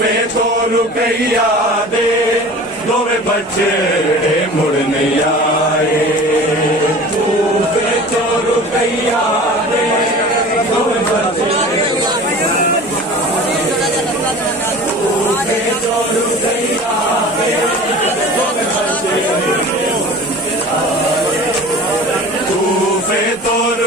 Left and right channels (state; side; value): normal; both; correlation 0.40